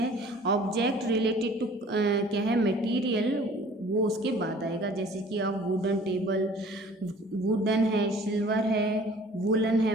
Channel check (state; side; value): normal; both; correlation 0.50